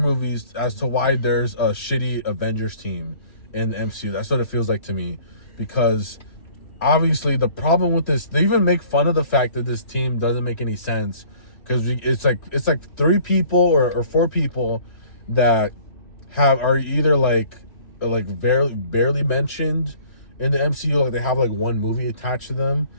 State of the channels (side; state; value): right; late; 3.0 ms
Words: as to why there's a shitty Avengers team in the MCU. That's what it feels like to me, because obviously the problem with this, they even make fun of the fact that this team doesn't make any sense, because it's like 3 people or 4 people that are either like barely mentioned in the MCU, like they have like one movie attached to them,